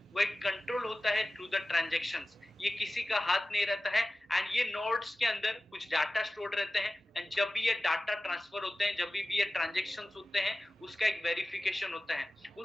वो एक कंट्रोल होता है थ्रू द ट्रांजैक्शंस। ये किसी का हाथ नहीं रहता है, एंड ये नोड्स के अंदर कुछ डाटा स्टोर रहते हैं, एंड जब भी ये डाटा ट्रांसफर होते हैं, जब भी ये ट्रांजैक्शंस होते हैं, उसका एक वेरिफिकेशन होता है।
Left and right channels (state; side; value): normal; both; correlation 0.96